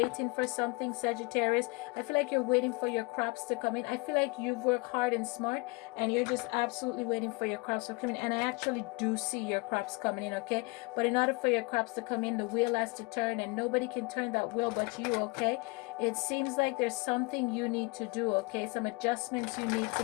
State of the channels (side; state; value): right; quieter; 27.2 dB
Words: for something, Sagittarius. I feel like you're waiting for your crops to come in. I feel like you've worked hard and smart, and you're just absolutely waiting for your crops to come in. And I actually do see your crops coming in, okay? But in order for your crops to come in, the wheel has to turn, and nobody can turn that wheel but you, okay? It seems like there's something you need to do, okay? Some adjustments you need